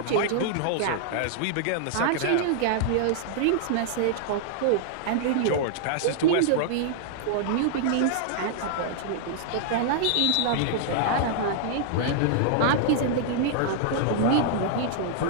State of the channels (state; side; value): different; both; correlation -0.01